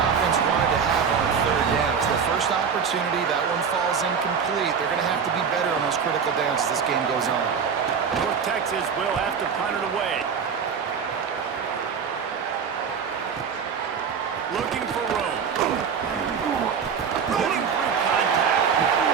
wanted to have on third down. It's their first opportunity. That one falls incomplete. They're going to have to be better on those critical downs as this game goes on. North Texas will have to punt it away. Looking for room. Running through contact.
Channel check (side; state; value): left; quieter; 6.6 dB